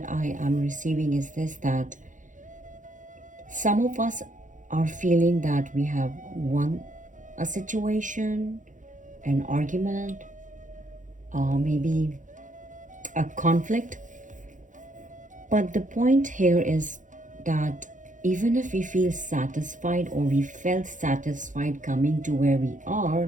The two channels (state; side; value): late; left; 0.37 ms